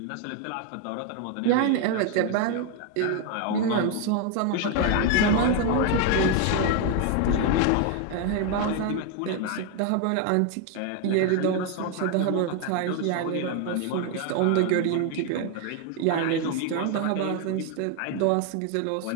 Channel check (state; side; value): different; both; correlation 0.01